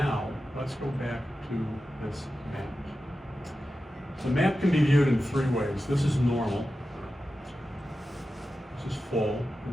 let's go back to this map. The map can be viewed in three ways. This is normal. This is full.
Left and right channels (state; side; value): normal; both; correlation 0.92